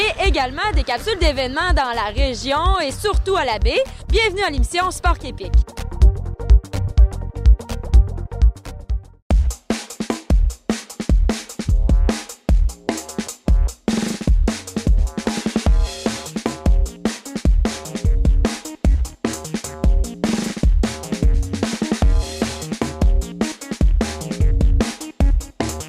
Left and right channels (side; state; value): both; identical; correlation 1.00